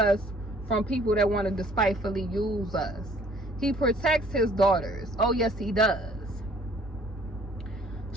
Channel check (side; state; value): both; normal; correlation 0.58